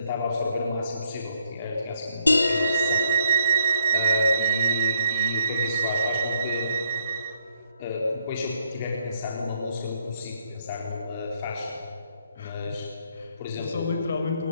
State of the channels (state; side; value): inverted; both; correlation -0.72